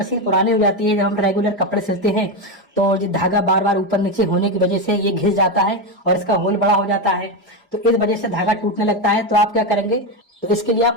पुरानी हो जाती है, जब हम रेगुलर कपड़े सिलते हैं तो जो धागा बार बार ऊपर नीचे होने की वजह से ये घिस जाता है और इसका होल बड़ा हो जाता है, तो इस वजह से धागा टूटने लगता है। तो आप क्या करेंगे, तो इसके लिए आप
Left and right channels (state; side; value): normal; both; correlation 0.11